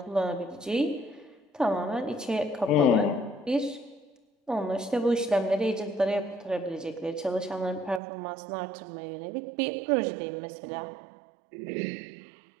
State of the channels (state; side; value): drops out; left; at 8.0 s